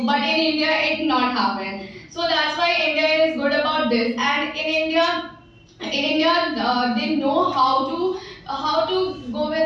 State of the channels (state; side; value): identical; both; correlation 1.00